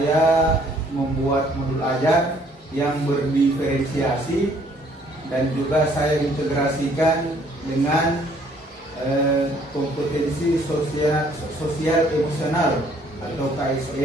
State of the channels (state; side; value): normal; both; correlation 0.62